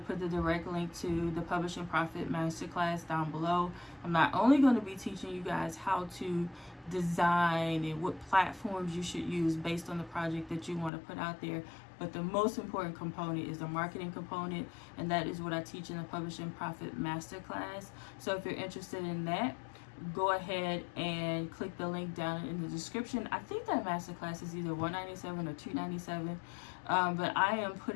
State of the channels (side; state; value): right; drops out; at 10.9 s